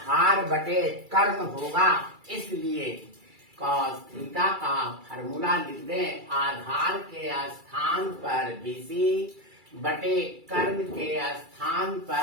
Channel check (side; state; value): left; late; 2.3 ms